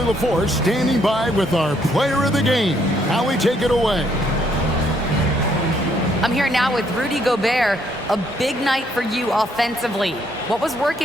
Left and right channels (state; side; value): normal; both; correlation 0.70